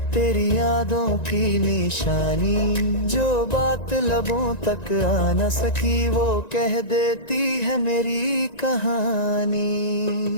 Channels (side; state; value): right; late; 1.9 ms